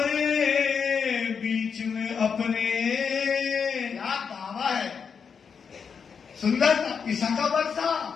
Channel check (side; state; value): right; quieter; 6.3 dB